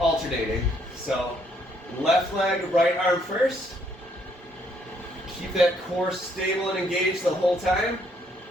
So left leg, right arm first. Keep that core stable and engaged the whole time.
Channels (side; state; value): both; normal; correlation 0.69